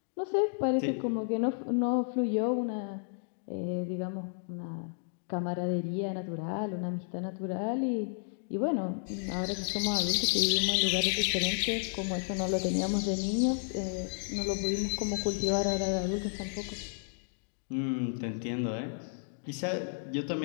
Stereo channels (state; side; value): silent; right; digital silence